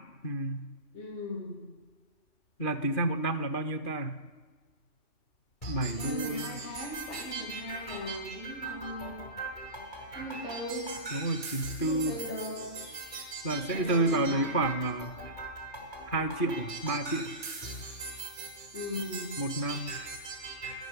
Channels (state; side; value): late; right; 2.4 ms